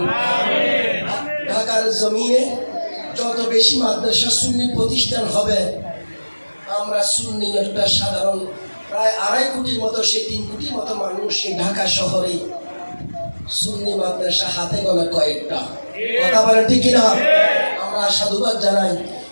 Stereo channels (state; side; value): inverted; both; correlation -1.00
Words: ঢাকার জমিনে যত বেশি মাদ্রাসা সুন্নি প্রতিষ্ঠান হবে, আমরা সুন্নি একটা সাধারণ প্রায় 2.5 কোটির মতো, সেই 3 কোটির মতো মানুষ এই ঢাকা শহরে সুন্নি মাদ্রাসা হাতে গোনা কয়েকটা। কথা বলেন ঠিক কিনা? আমরা সাধুবাদ জানাই